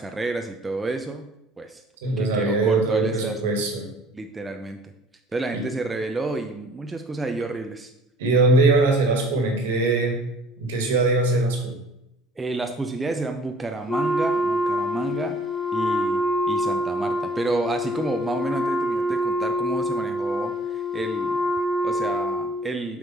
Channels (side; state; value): both; normal; correlation 0.54